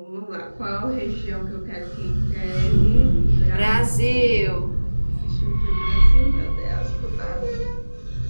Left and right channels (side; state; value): both; inverted; correlation -1.00